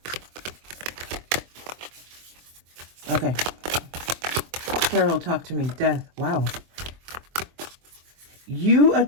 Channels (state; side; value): late; left; 24 ms